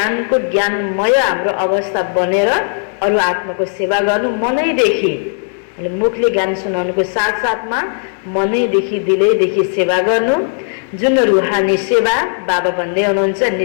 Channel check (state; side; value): silent; right; digital silence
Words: ज्ञानमय हाम्रो अवस्था बनेर अरू आत्माको सेवा गर्नु मनैदेखि, मुखले ज्ञान सुनाउनुको साथसाथमा मनैदेखि दिलैदेखि सेवा गर्नु, जुन रुहानी सेवा बाबा भन्दै हुनुहुन्छ